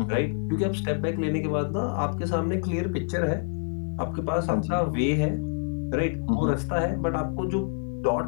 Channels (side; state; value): right; silent; 60 dB below the other